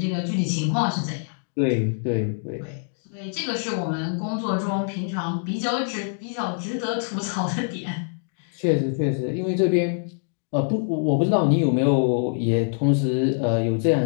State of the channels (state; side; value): silent; right; digital silence